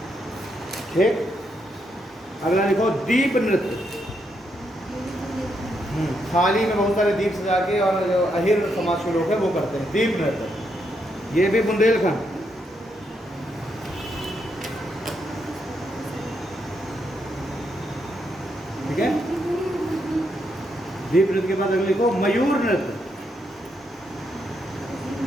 ठीक। अगला लिखो दीप नृत्य। थाली में बहुत सारे दीप सजा के, और जो अहिर समाज के लोग हैं वो करते हैं दीप नृत्य, ये भी बुंदेलखंड। ठीक है, दीप नृत्य के बाद अगले लिखो मयूर नृत्य।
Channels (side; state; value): both; normal; correlation 0.79